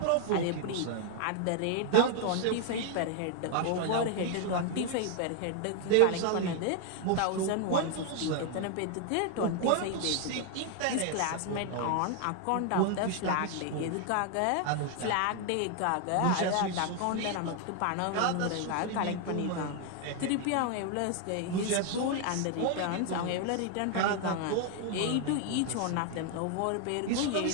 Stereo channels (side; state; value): both; different; correlation 0.00